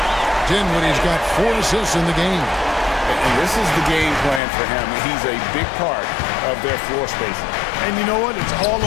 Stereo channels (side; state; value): right; drops out; at 4.4 s